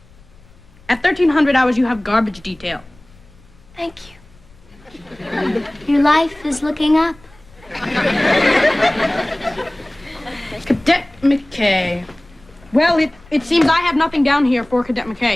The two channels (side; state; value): left; noise; rumble, 27 dB below the sound